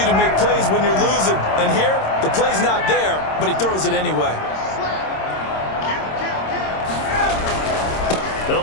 to make plays when you're losing. And here, the play's not there, but he throws it anyway. They'll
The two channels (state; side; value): late; right; 26 ms